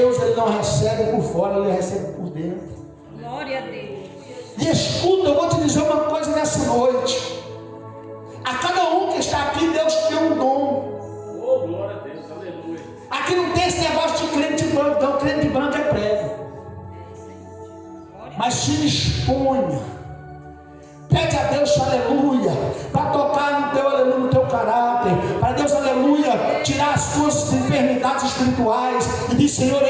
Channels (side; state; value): both; identical; correlation 1.00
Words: ele não recebe por fora, ele recebe por dentro. Glória a Deus. E escuta, eu vou te dizer uma coisa nessa noite. A cada um que está aqui, Deus te deu um dom. Oh, glória a Deus, aleluia. Aqui não tem esse negócio de crente branco, não. Crente branco é prego. Mas se exponha. Pede a Deus, aleluia, para tocar no teu aleluia, no teu caráter. Para Deus, aleluia, tirar as tuas enfermidades espirituais. E diz, Senhor,